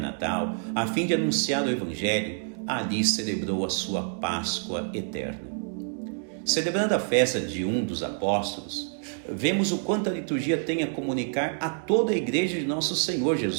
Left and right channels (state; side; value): silent; left; 60 dB below the other